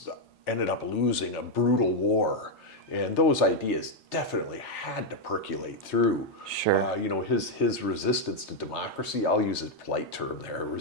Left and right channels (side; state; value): both; normal; correlation 0.01